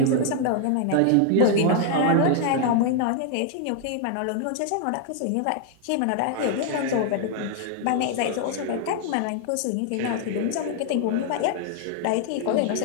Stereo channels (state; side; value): different; both; correlation 0.00